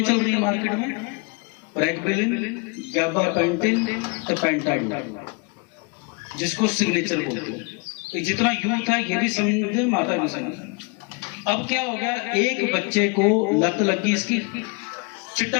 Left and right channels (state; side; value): quieter; right; 31.7 dB